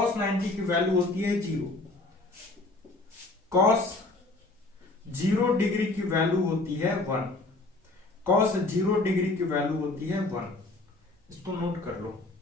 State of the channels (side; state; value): right; quieter; 3.1 dB